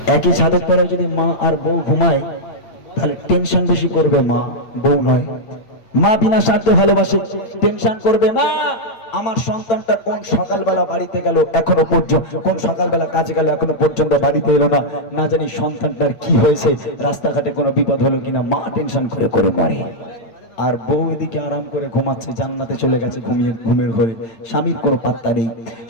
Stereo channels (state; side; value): late; right; 8.8 ms